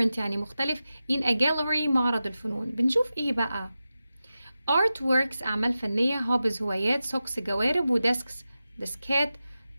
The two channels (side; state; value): both; inverted; correlation -0.93